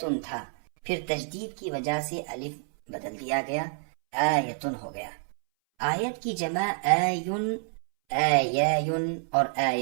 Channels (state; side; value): silent; left; 59 dB below the other